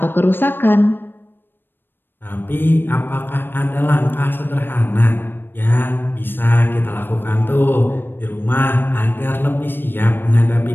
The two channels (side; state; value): right; late; 0.097 ms